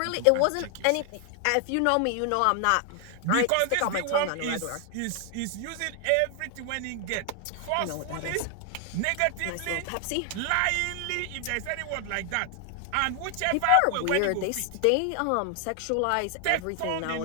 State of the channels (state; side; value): different; both; correlation 0.00